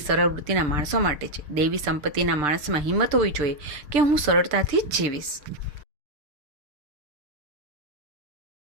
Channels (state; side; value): late; left; 6.6 ms